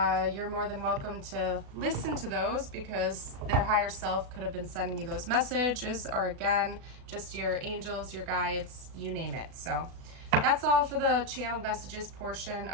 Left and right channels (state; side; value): late; left; 36 ms